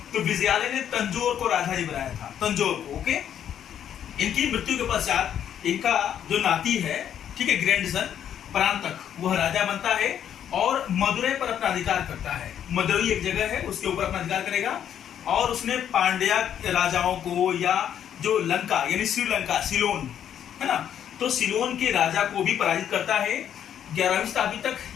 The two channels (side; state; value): right; quieter; 9.6 dB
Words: तो विजयालय ने तंजौर को राजधानी बनाया था, तंजौर को। ओके। इनकी मृत्यु के पश्चात इनका जो नाती है, ठीक है, ग्रैंडसन परांतक, वह राजा बनता है और मदुरै पर अपना अधिकार करता है। मदुरै एक जगह है, उसके ऊपर अपना अधिकार करेगा। और उसने पांड्या राजाओं को, या जो लंका यानी श्रीलंका, सिलोन, है ना, तो सिलोन के राजा को भी पराजित करता है। 11वीं शताब्दी तक